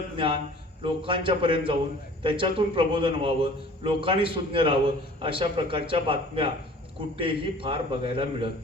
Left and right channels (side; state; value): both; normal; correlation 0.48